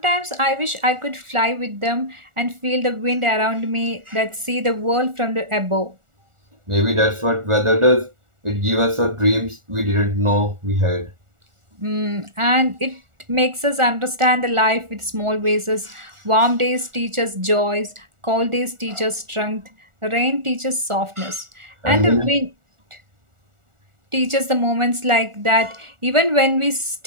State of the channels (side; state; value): left; late; 1.4 ms